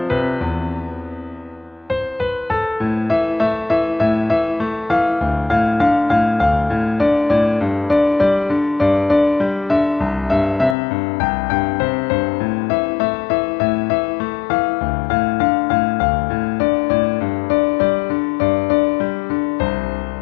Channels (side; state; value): right; drops out; at 10.8 s